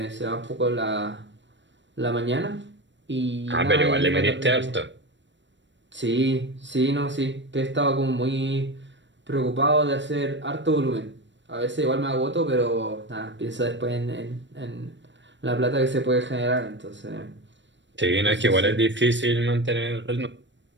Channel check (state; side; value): late; left; 0.53 ms